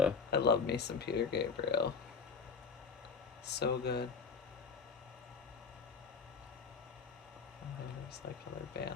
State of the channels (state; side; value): quieter; right; 5.3 dB